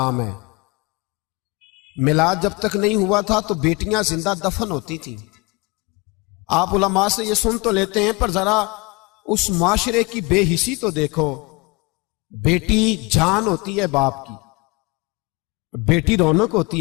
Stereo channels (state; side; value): quieter; right; 26.0 dB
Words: ہے. میلاد جب تک نہیں ہوا تھا تو بیٹیاں زندہ دفن ہوتی تھیں. آپ علماء سے یہ سن تو لیتے ہیں پر ذرا اس معاشرے کی بے حسی تو دیکھو. بیٹی جان ہوتی ہے باپ کی, بیٹی رونق